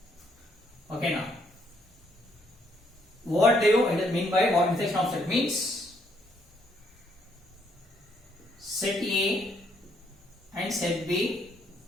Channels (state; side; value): normal; both; correlation 0.71